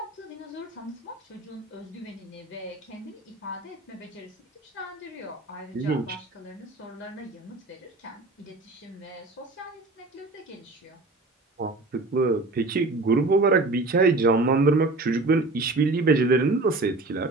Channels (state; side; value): quieter; left; 3.2 dB